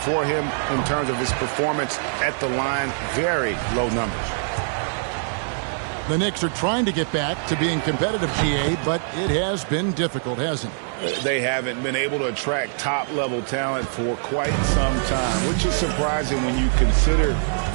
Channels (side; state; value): left; silent; 63 dB below the other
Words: him in terms of his performance at the line. Very low numbers. The Knicks are trying to get back to being competitive, GA, but it has been difficult, hasn't it? They haven't been able to attract top-level talent for quite some time, which is surprising when you consider